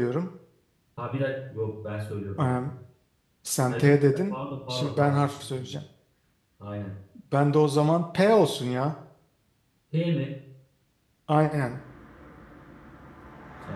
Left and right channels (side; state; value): both; identical; correlation 1.00